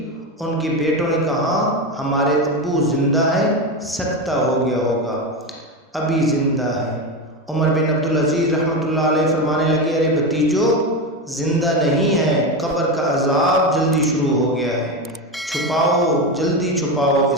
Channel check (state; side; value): normal; both; correlation 0.17